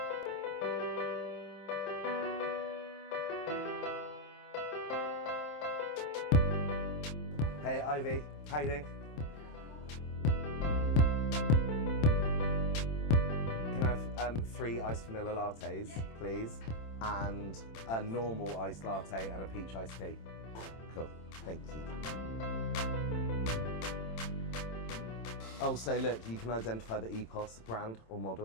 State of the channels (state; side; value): late; right; 27 ms